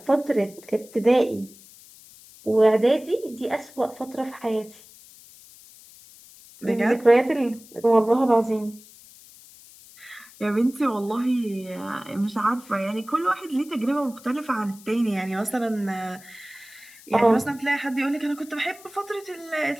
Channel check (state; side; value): noise; left; hiss, 22 dB below the sound